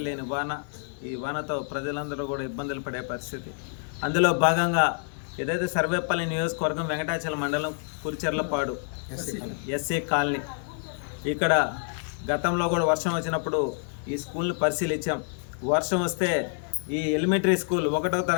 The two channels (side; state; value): right; silent; 60 dB below the other